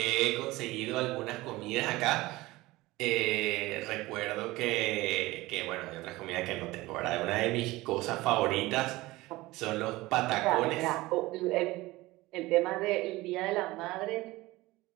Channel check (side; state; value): left; quieter; 19.5 dB